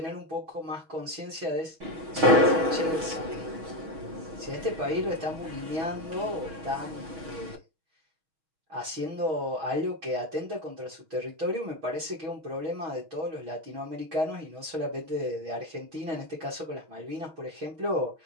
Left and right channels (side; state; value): left; late; 6.2 ms